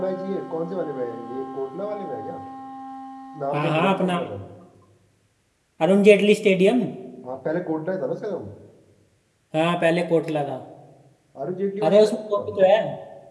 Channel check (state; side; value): identical; both; correlation 1.00